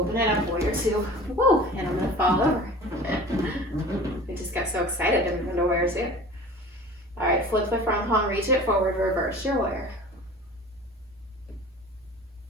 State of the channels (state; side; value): normal; both; correlation 0.40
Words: it up, warrior two. Woo, and I'm gonna fall over. I just got so excited to move into warrior two. All right, flip the front palm, reach it forward, reverse your warrior.